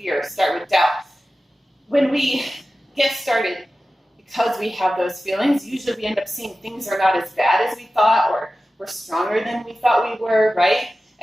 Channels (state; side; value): normal; both; correlation 0.95